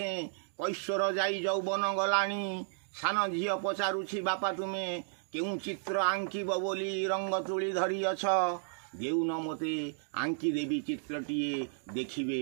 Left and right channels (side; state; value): left; silent; digital silence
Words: कैश्वर जाई यौवन गलाणी सान झियो पचारुछि बापा तुमे केउ चित्र आंकिब बोली रंग तुली धरी अछ देउन मते आंकी देवी चित्रटिए